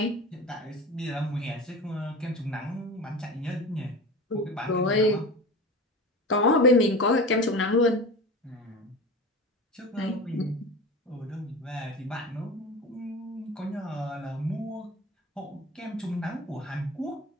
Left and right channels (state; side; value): normal; both; correlation 0.31